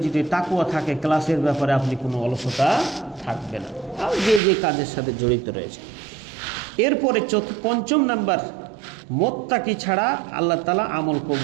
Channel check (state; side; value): drops out; left; at 4.4 s